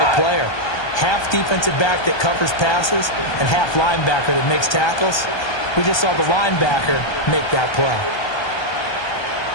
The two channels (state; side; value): late; right; 1.2 ms